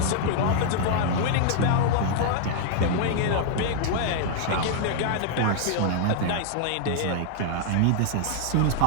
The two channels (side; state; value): both; different; correlation 0.00